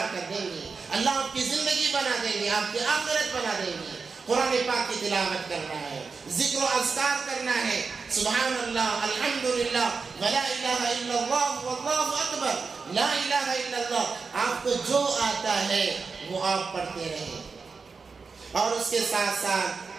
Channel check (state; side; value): quieter; left; 4.8 dB